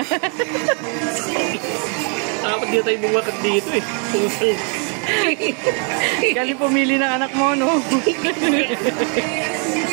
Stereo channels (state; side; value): quieter; left; 38.8 dB